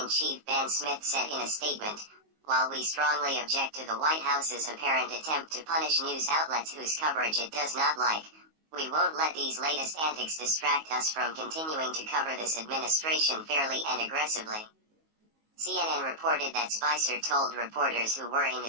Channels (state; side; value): late; left; 19 ms